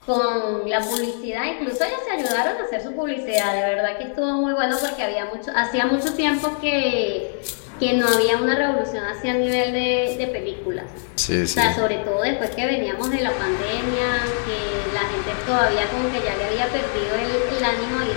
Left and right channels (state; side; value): silent; right; digital silence